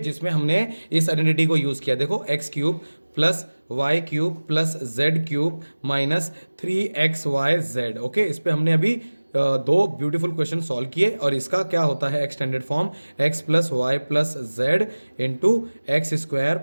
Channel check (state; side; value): inverted; both; correlation -1.00